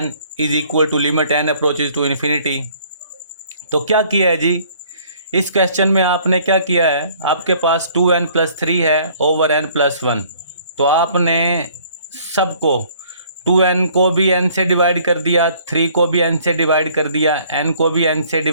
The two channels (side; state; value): both; inverted; correlation -0.58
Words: is equal to limit n approaches to infinity. तो क्या किया है जी, इस क्वेश्चन में आपने क्या किया है, आपके पास 2n+3 है ओवर n+1। तो आपने सबको 2n को भी n से डिवाइड कर दिया, 3 को भी n से डिवाइड कर दिया, n को भी n से